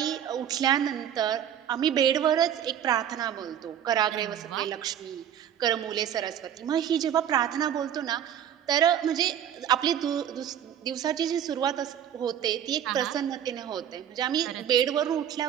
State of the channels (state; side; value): quieter; left; 9.7 dB